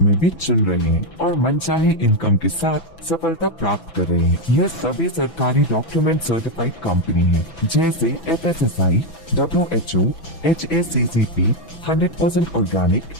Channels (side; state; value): right; late; 6.0 ms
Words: में भी चुन रहे हैं और मनचाहे इनकम के साथ सफलता प्राप्त कर रहे हैं। यह सभी सरकारी डॉक्यूमेंट सर्टिफाइड कंपनी है जैसे FSSAI, WHO, HACCP, 100% organic,